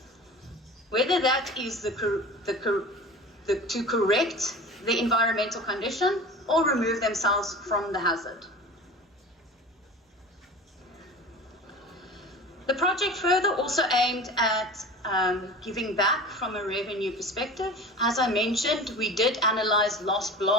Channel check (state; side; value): normal; both; correlation 0.37